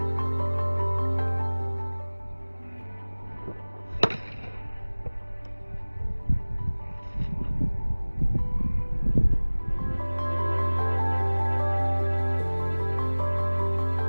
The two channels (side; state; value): both; inverted; correlation -1.00